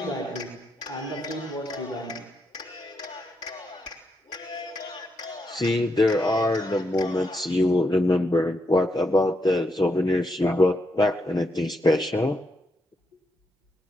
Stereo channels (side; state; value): both; normal; correlation 0.81